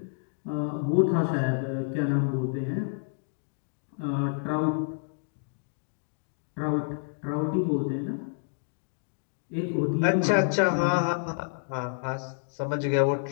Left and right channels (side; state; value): right; silent; digital silence